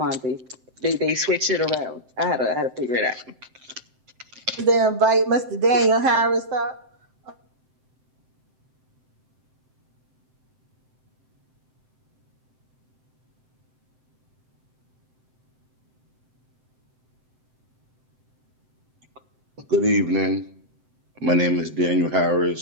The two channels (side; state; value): left; late; 7.8 ms